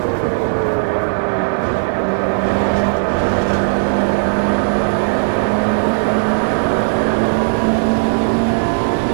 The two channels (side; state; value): left; silent; digital silence